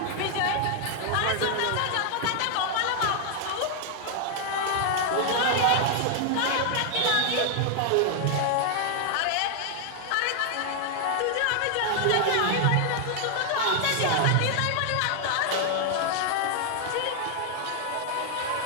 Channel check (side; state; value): both; different; correlation 0.00